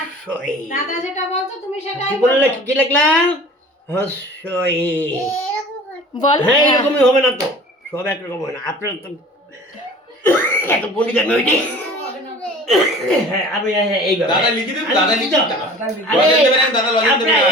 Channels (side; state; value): both; normal; correlation 0.44